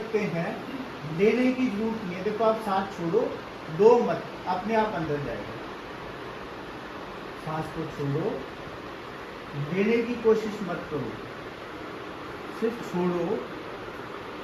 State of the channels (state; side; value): identical; both; correlation 1.00